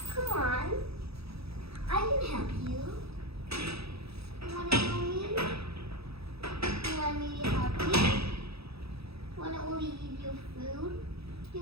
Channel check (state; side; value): late; left; 0.77 ms